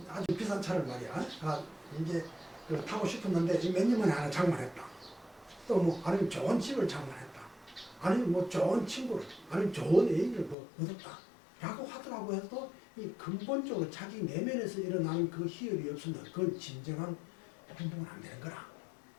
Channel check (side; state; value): right; drops out; at 10.6 s